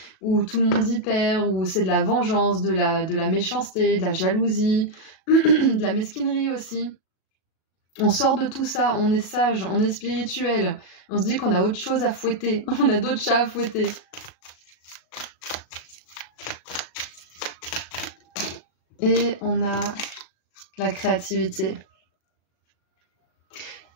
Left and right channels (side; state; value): right; late; 37 ms